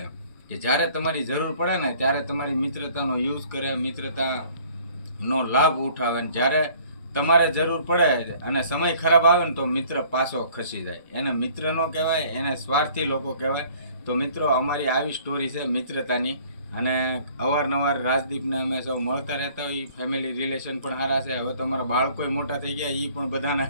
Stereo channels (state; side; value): inverted; both; correlation -0.55